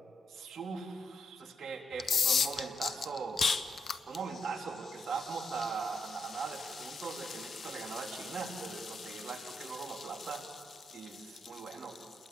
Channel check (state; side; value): normal; both; correlation 0.80